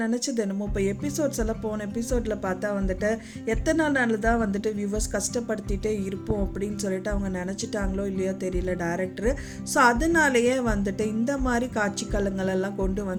நினச்சது என்னமோ இப்போ எபிசோட்ஸ் எல்லாம் போன எபிசோடில் பார்த்தா எத்தனை நாள் தான் வியூவர்ஸ் கஷ்டப்படுத்திட்டே இருப்போம் அப்படின்னு சொல்லிட்டு அவங்க நினச்சிட்டாங்களோ இல்லையோ தெரியல டேரக்டரு. ஸோ அதனாலேயே இந்த மாதிரி காட்சிக்களங்களெல்லாம்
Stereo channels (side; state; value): both; identical; correlation 1.00